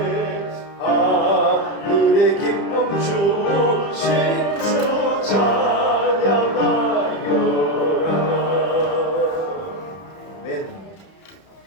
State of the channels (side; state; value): right; late; 30 ms